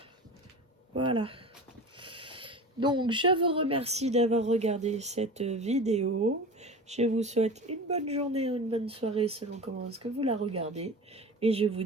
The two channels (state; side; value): normal; both; correlation 0.33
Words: Voilà. Donc, je vous remercie d'avoir regardé cette vidéo. Je vous souhaite une bonne journée ou une bonne soirée selon comment est-ce que vous la regardez. Et je vous